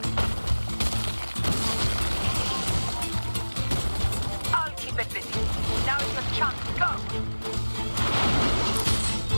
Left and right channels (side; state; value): both; inverted; correlation -1.00